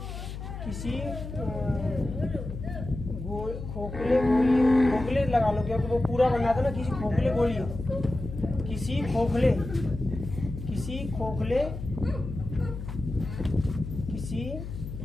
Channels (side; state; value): left; noise; hum, 8 dB below the sound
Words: किसी खोखले गोली, खोखले लगा लो क्योंकि वो पूरा बनना था ना, किसी खोखले गोली, किसी खोखले